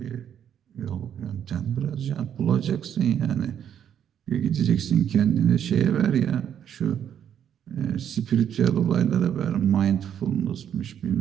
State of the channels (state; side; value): quieter; left; 9.2 dB